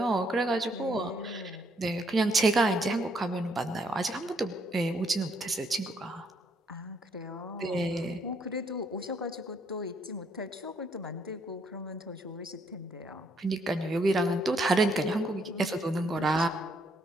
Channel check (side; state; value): both; normal; correlation 0.71